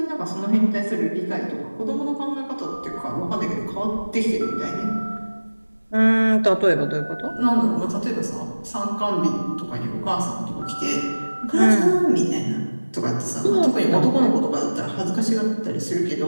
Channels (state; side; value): inverted; both; correlation -1.00